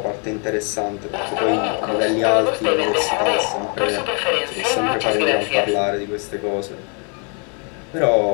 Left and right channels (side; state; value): right; quieter; 37.6 dB